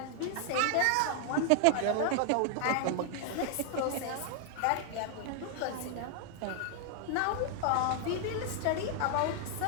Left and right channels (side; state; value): both; different; correlation 0.00